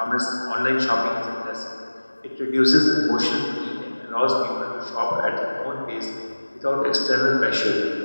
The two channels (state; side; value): inverted; both; correlation -1.00